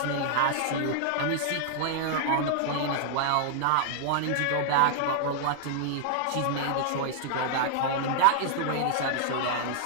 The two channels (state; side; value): different; both; correlation -0.01